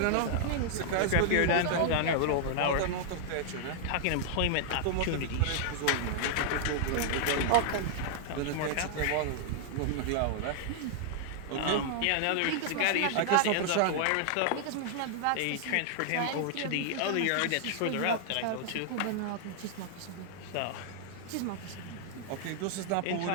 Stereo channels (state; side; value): different; both; correlation -0.01